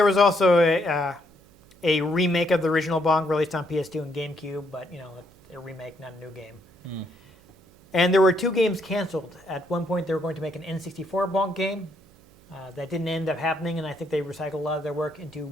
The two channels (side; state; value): right; noise; hum, 27 dB below the sound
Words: a remake of the original Bonk released on PS2 and GameCube, but a remake, not a new game. And there were two games canceled. At one point, they were going to make an N64 Bonk game. That didn't end up happening, and I think they recycled a lot of their work into